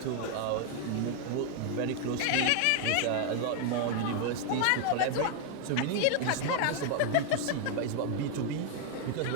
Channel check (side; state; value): both; different; correlation 0.00